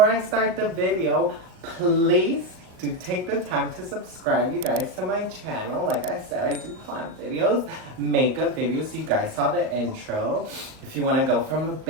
I start the video, please do take the time to subscribe, you guys, to my channel. Like I said, I do plant videos, makeup videos. You guys saw the intro. If you want to go from a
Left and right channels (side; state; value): left; late; 38 ms